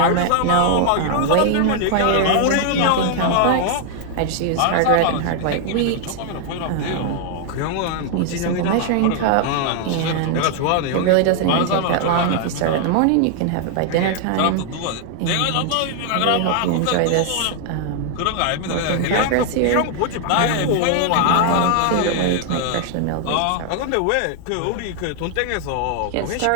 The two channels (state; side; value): different; both; correlation 0.00